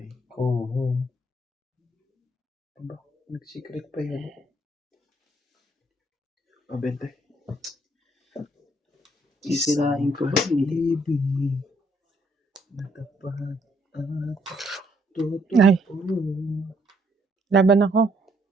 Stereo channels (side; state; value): both; normal; correlation 0.70